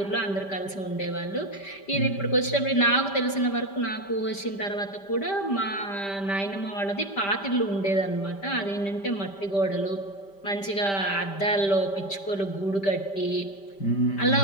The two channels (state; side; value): late; right; 5.1 ms